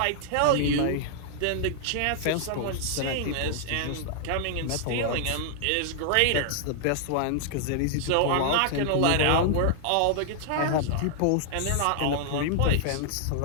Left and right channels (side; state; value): both; different; correlation -0.01